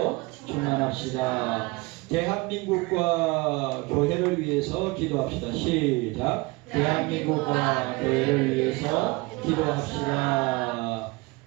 충만합시다. 대한민국과 교회를 위해서 기도합시다. 시작. 대한민국과 교회를 위해서 기도합시다.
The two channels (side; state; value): left; quieter; 24.2 dB